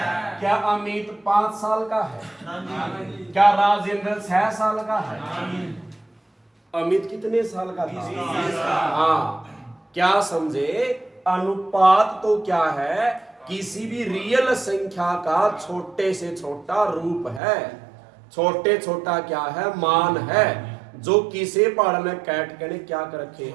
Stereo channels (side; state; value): left; drops out; at 17.4 s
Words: क्या अमित 5 साल का है? क्या राजेंद्र 6 साल का है? अमित कितने साल का था? हाँ, क्या समझे? अनुपात तो क्या है? किसी भी रियल संख्या का छोटे से छोटा रूप है। छोटे छोटा क्या है? मान है, जो किसे पहाड़ में काट के क्या कर रखे